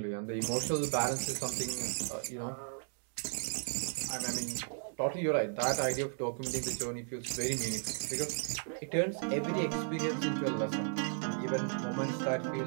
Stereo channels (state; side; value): silent; left; digital silence